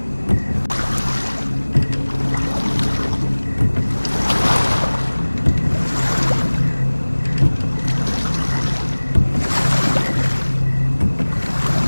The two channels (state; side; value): inverted; both; correlation -1.00